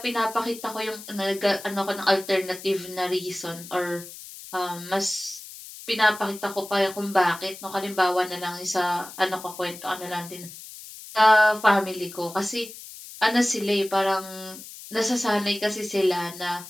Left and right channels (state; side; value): noise; left; hiss, 15 dB below the sound